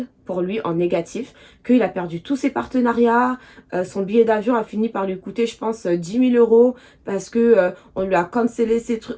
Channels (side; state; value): both; identical; correlation 1.00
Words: pour lui, en négatif, qu'il a perdu tous ses partenariats. Son billet d'avion a fini par lui coûter, je pense, 10 000 euros parce que on lui a cancellé ses